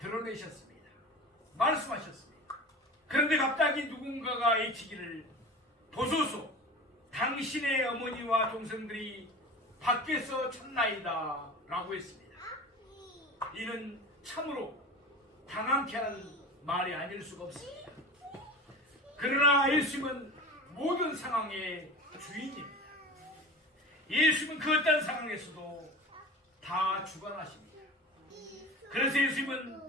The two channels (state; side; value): normal; both; correlation 0.34